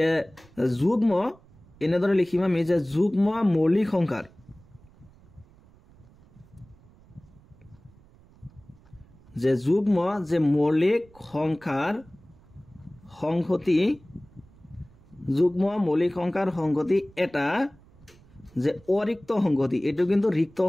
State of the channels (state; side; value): noise; right; rumble, 27 dB below the sound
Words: যুগ্ম এনেদৰে লিখিম আমি যে যুগ্ম মৌলিক সংখ্যাৰ যে যুগ্ম যে মৌলিক সংখ্যাৰ সংহতি যুগ্ম মৌলিক সংখ্যাৰ সংহতি এটা যে অৰিক্ত সংহতি এটো কিন্তু ৰিক্ত